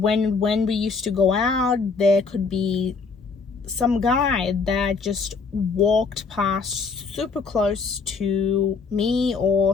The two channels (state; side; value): quieter; right; 4.8 dB